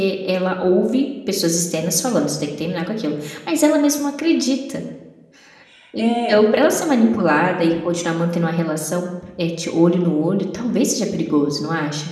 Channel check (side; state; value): both; identical; correlation 1.00